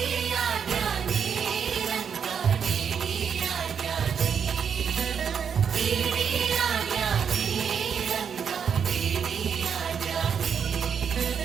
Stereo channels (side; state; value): left; quieter; 7.2 dB